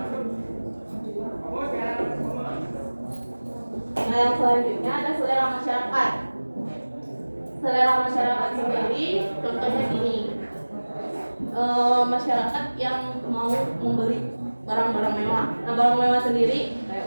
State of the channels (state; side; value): inverted; both; correlation -1.00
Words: Nah yang selanjutnya ada selera masyarakat. Selera masyarakat sendiri contohnya gini, masyarakat yang mau membeli barang-barang mewah. Nah barang mewah sendiri